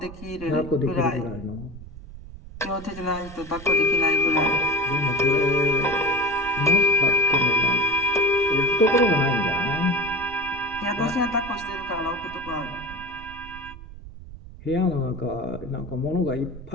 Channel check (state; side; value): noise; right; rumble, 15 dB below the sound